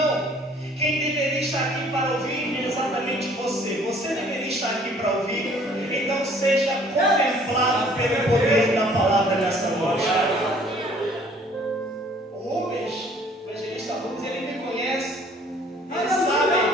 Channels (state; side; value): normal; both; correlation 0.56